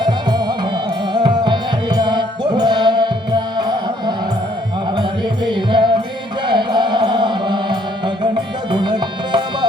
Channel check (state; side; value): normal; both; correlation 0.65